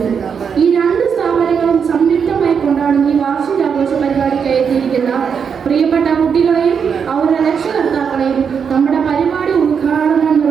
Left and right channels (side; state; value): left; quieter; 6.7 dB